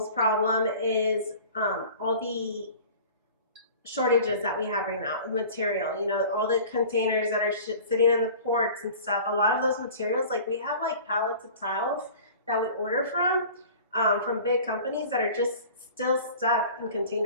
problem is all the shortages that we have right now, material, you know, all the containers that are sitting in the ports and stuff. A lot of those materials, like we have like pallets of tiles that we order from big companies that are just still stuck in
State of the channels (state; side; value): inverted; both; correlation -0.42